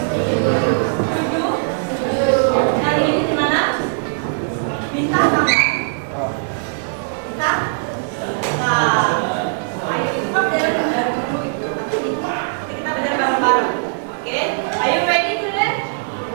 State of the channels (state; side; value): silent; left; digital silence